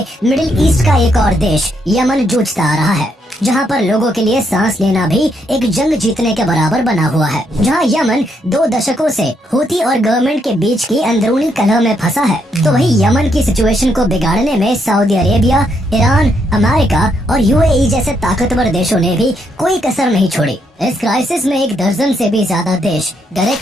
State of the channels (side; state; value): both; normal; correlation 0.76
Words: मिडिल ईस्ट का एक और देश यमन जूझता आ रहा है, जहां पर लोगों के लिए सांस लेना भी एक जंग जीतने के बराबर बना हुआ है। जहां यमन 2 दशकों से हूती और गवर्नमेंट के बीच की अंदरूनी कलह में फंसा है, तो वही यमन की सिचुएशन को बिगाड़ने में सऊदी अरेबिया, ईरान, अमेरिका और यूएई जैसे ताकतवर देशों ने भी कोई कसर नहीं छोड़ी। इस क्राइसिस में 1 दर्जन से भी ज्यादा देश